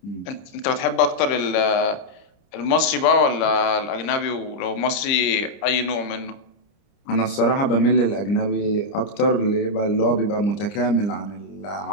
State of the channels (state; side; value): late; right; 30 ms